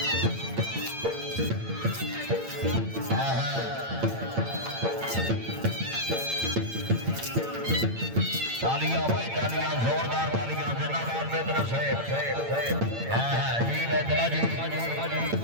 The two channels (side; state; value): left; late; 8.8 ms